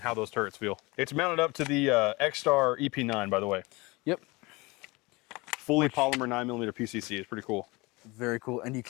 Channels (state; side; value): quieter; right; 24.2 dB